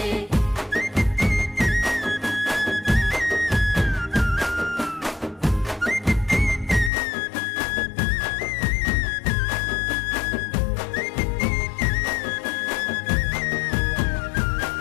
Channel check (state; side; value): drops out; right; at 6.9 s